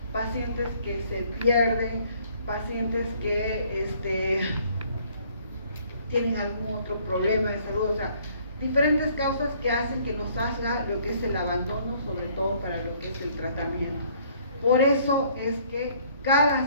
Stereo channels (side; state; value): both; inverted; correlation -0.61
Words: pacientes que se pierden, pacientes que tienen algún otro problema de salud, o sea, diferentes causas que hacen que nos haga lo que es el abandono, sobre todo para lo que es el tratamiento. Por eso es que